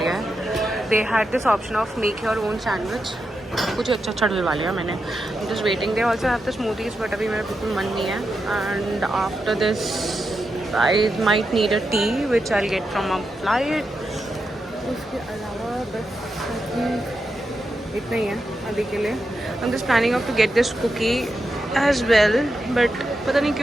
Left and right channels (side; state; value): both; normal; correlation 0.87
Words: है they had this option of make your own sandwich. कुछ अच्छा अच्छा डलवा लिया मैंने। Just waiting, they also have the smoothies, but अभी मेरा बिल्कुल मन नहीं है। And after this I might need a tea which I get from a flight. उसके अलावा बस इतना ही है अभी के लिए। I am just planning of to get this cookie as well, but पता नहीं